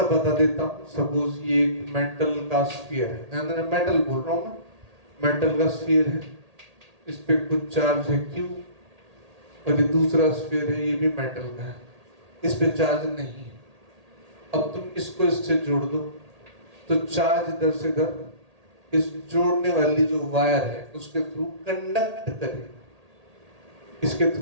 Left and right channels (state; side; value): late; left; 1.8 ms